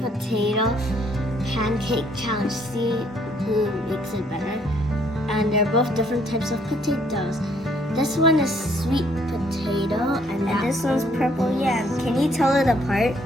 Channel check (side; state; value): both; normal; correlation 0.66